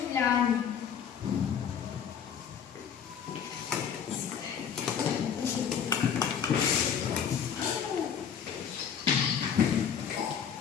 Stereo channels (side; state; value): right; quieter; 7.9 dB